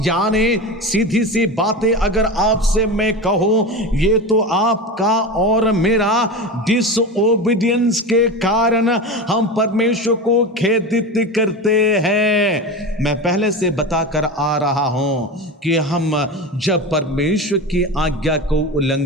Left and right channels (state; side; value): normal; both; correlation 0.25